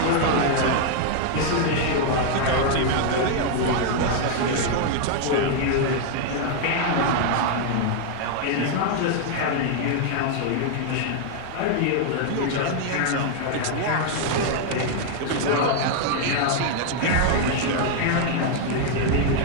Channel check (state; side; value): different; both; correlation 0.00